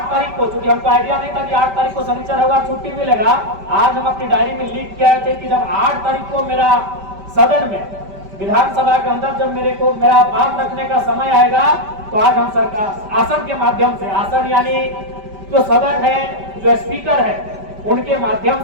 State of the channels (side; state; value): left; late; 5.1 ms